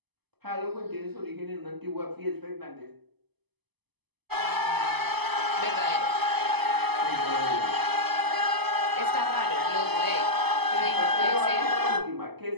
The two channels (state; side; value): late; left; 0.99 ms